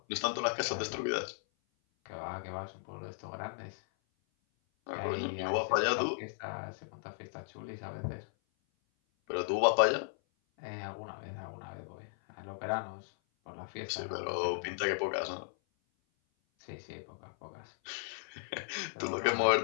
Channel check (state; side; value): silent; right; 54 dB below the other